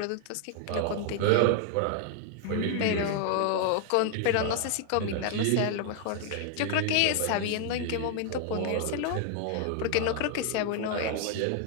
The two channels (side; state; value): both; different; correlation 0.00